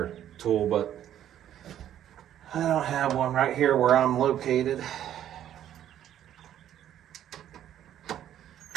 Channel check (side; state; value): left; quieter; 11.1 dB